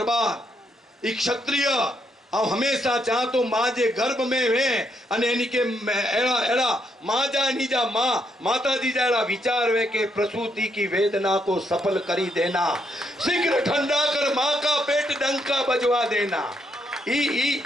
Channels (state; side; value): normal; both; correlation 0.76